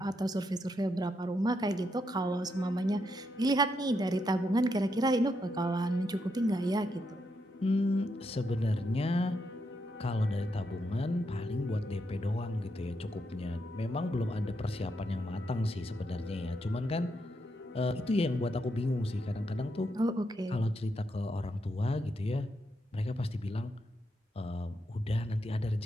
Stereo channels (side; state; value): both; normal; correlation 0.80